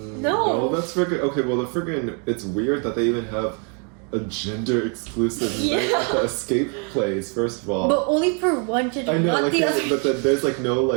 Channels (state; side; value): quieter; left; 37.7 dB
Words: That's freaking okay. Well, it's weird that they even have a gender exclusive night at the escape place. First of all, But only for one gender, I know, not like, the other. but then there's like no